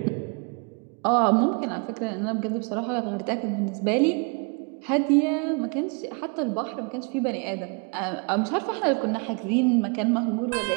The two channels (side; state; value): left; quieter; 34.5 dB